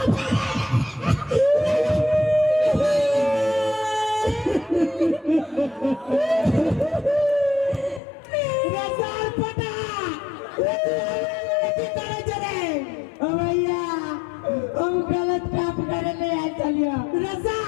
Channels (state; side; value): drops out; right; at 8.0 s